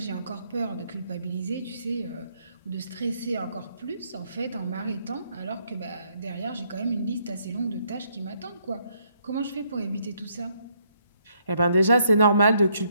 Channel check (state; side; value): inverted; both; correlation -0.72